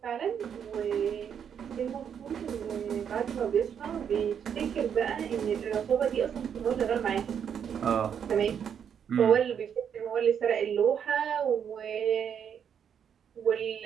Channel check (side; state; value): left; quieter; 8.0 dB